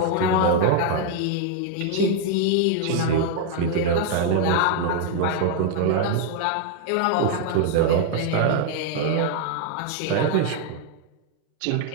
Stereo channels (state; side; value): different; both; correlation 0.00